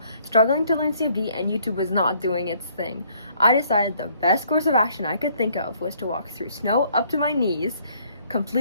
struggling to learn CFD, and YouTube was not doing its thing. I decided the best course of action I could think of was to walk through snow up to my knees,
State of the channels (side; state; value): both; inverted; correlation -0.63